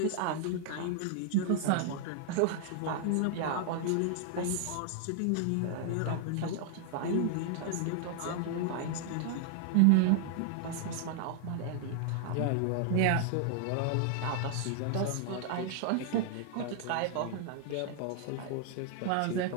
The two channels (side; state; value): both; different; correlation 0.00